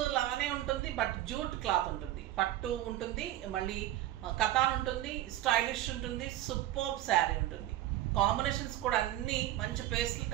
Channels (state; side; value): quieter; left; 14.1 dB